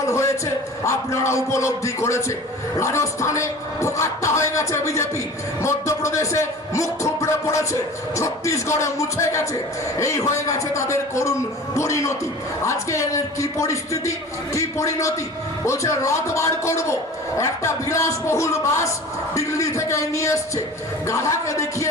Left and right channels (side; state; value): both; normal; correlation 0.39